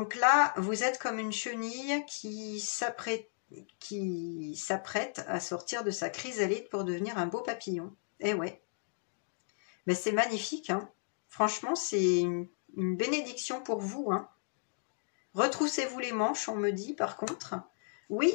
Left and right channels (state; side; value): silent; right; digital silence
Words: là, vous êtes comme une chenille qui s'apprête à sortir de sa chrysalide pour devenir un beau papillon. Eh ouais. Mais c'est magnifique. Hein. Franchement, c'est une bénédiction pour vous. Hein. Retroussez-vous les manches, on me dit par contre. Oui,